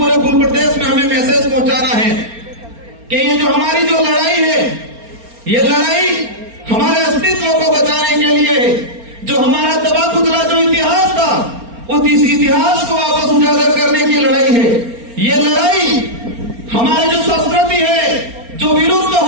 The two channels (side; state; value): left; late; 4.3 ms